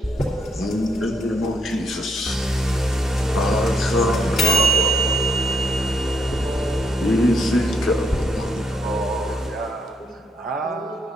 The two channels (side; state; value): both; normal; correlation 0.74